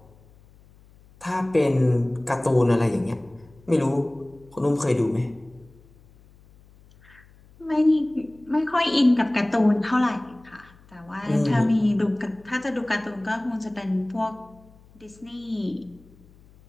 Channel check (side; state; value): left; noise; hum, 27 dB below the sound